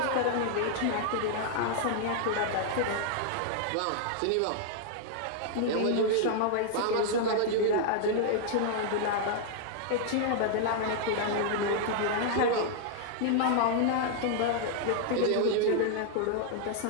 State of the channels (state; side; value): different; both; correlation -0.01